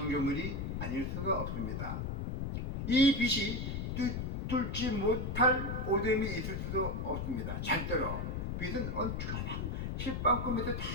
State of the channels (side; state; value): left; noise; rumble, 2 dB below the sound